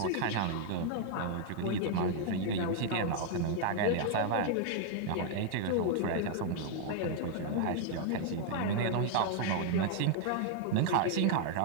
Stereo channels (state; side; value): different; both; correlation 0.00